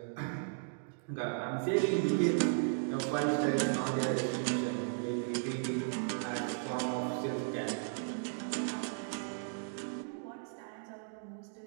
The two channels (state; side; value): silent; left; digital silence